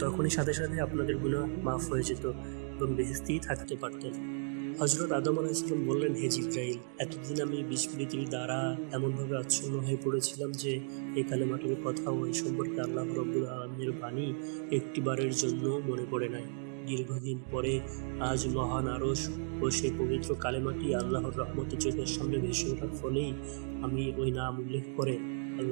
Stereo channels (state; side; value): silent; left; 55 dB below the other